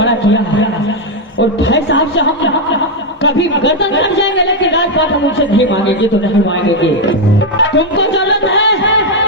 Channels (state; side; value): normal; both; correlation 0.03